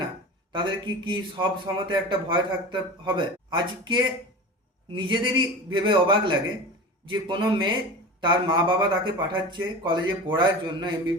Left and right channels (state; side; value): normal; both; correlation 0.31